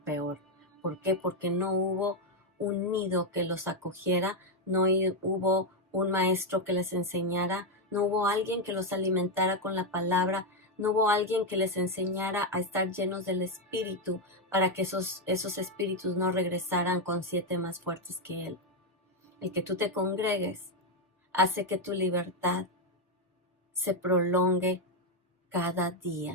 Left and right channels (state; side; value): normal; both; correlation 0.03